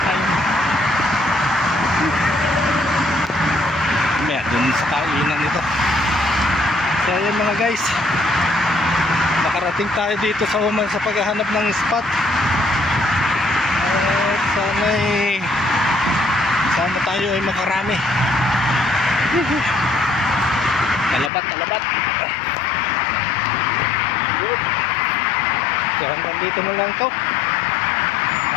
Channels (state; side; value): drops out; right; at 21.3 s